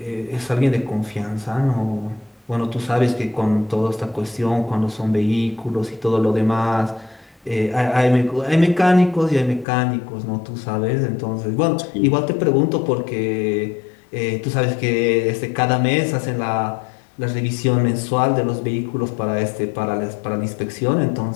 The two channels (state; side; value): drops out; right; at 9.7 s